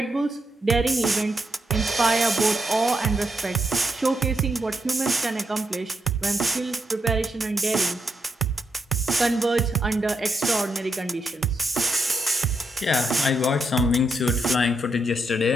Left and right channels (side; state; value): both; normal; correlation 0.81